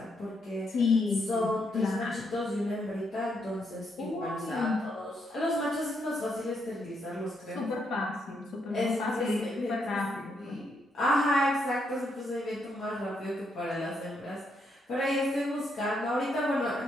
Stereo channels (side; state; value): both; normal; correlation 0.77